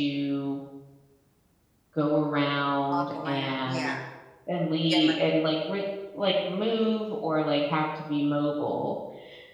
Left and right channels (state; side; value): identical; both; correlation 1.00